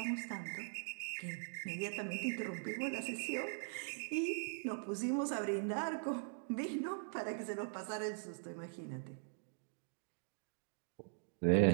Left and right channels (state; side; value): silent; left; digital silence